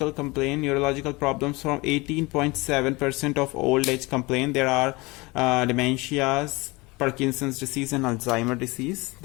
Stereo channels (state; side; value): quieter; right; 24.0 dB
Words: complaint, neurological problems from 18.7% of old age complaint. There are dementias, Parkinson's disease and Alzheimer disease.